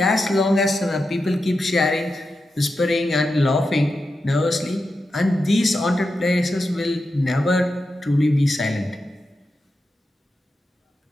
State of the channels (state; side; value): normal; both; correlation 0.89